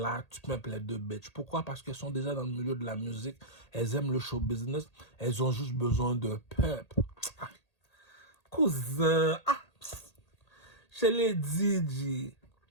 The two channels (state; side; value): late; right; 1.8 ms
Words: tu peux les deux bitches. Pourquoi? Parce qu'elles sont déjà dans le milieu de la musique. Elles aiment le show business. Elles ont juste besoin de pep. Ah, cousin, je l'ai dit, G.